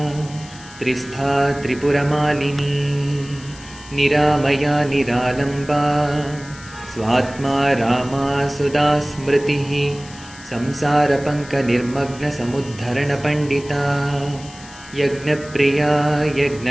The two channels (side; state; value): left; noise; hiss, 19 dB below the sound